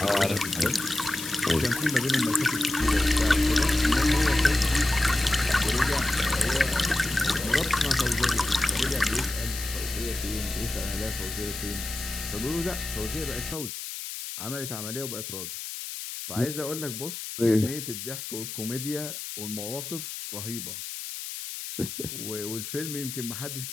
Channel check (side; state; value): left; noise; hiss, 8 dB below the sound